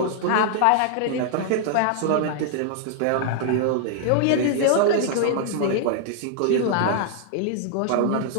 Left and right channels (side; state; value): both; different; correlation -0.01